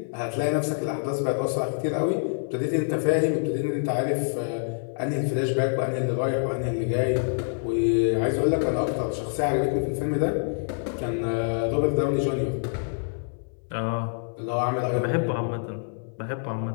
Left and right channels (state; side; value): silent; right; 60 dB below the other